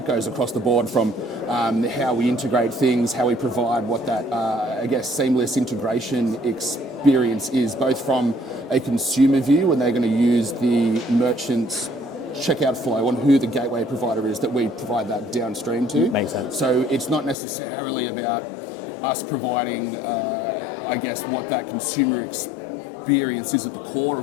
goes across the board from how we integrate things, how we provide what that seamless integration experience is, both from a consumer view when they're going to use the merchant's checkout flow on who the gateway provider is that we provide that downstream to. Makes sense. So it's not necessarily about us providing, what that consumer experience is at the core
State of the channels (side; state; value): right; drops out; at 17.4 s